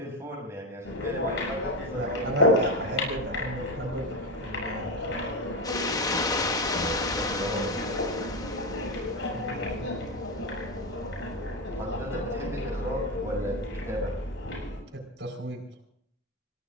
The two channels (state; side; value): normal; both; correlation 0.14